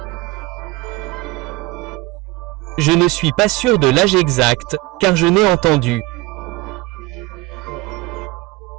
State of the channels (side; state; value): left; quieter; 20.4 dB